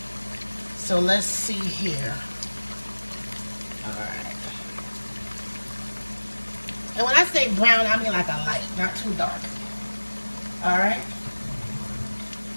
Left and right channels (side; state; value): both; inverted; correlation -1.00